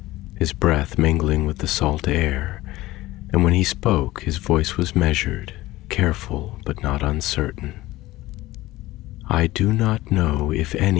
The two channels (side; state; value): right; quieter; 17.6 dB